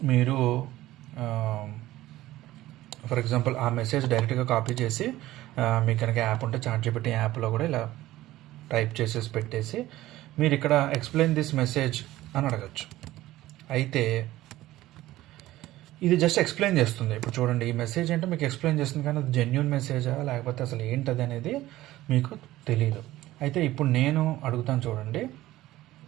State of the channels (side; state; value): left; quieter; 16.0 dB